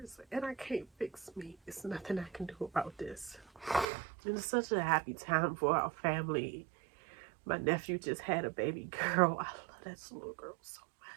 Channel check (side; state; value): left; drops out; at 3.9 s